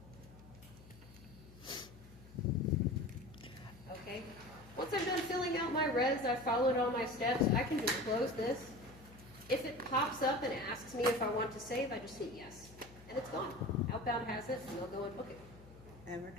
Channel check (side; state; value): left; noise; hum, 20 dB below the sound